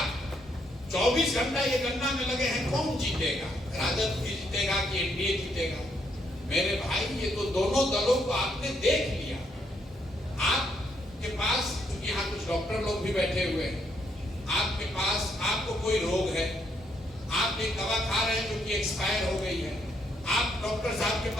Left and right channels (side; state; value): both; normal; correlation 0.74